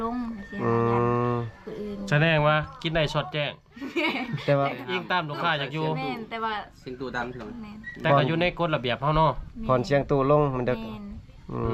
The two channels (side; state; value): both; identical; correlation 1.00